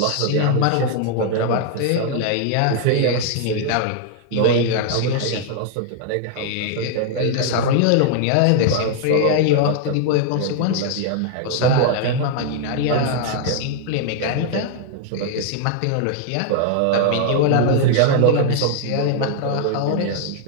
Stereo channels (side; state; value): both; different; correlation 0.00